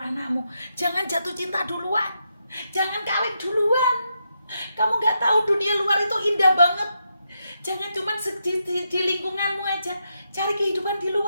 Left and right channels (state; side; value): inverted; both; correlation -0.82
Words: anakmu. Jangan jatuh cinta duluan. Jangan kawin duluan. Kamu nggak tahu dunia luar itu indah banget. Jangan cuma di lingkunganmu aja, cari kehidupan di